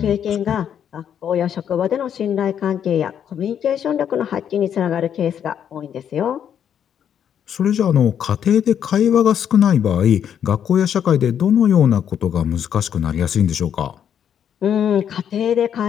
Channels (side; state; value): right; quieter; 8.9 dB